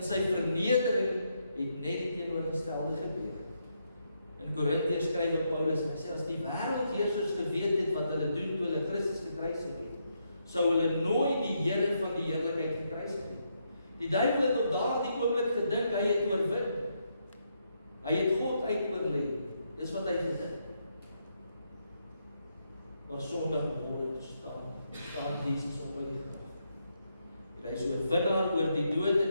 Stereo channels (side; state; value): both; inverted; correlation -0.79